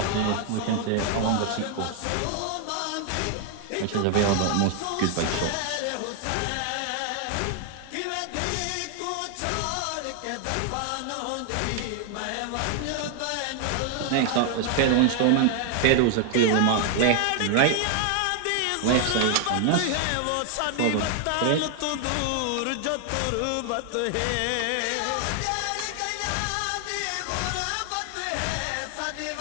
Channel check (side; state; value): both; different; correlation 0.00